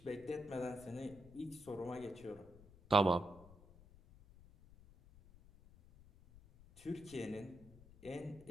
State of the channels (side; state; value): left; noise; rumble, 21 dB below the sound